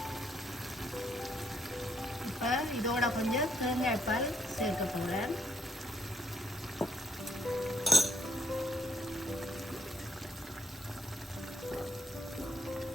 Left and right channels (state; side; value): normal; both; correlation 0.72